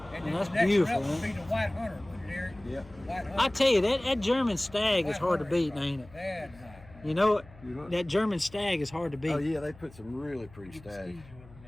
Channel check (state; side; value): noise; left; hum, 22 dB below the sound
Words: And Man, that's the next beautiful, one would man. be the white hunter, wouldn't it, Eric? Yep. White hunter. I tell you that German stag is hard to beat, ain't it? That's nice. You know what? You know what? That German stag is hard to beat. Oh yeah, they put some really pretty stags.